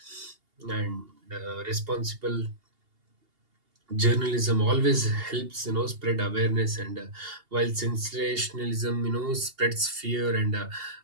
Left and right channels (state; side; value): late; left; 2.8 ms